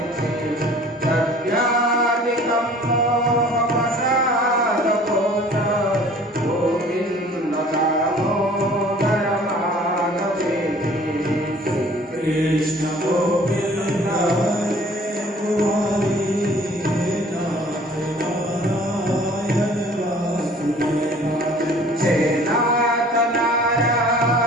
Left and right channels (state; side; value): normal; both; correlation 0.51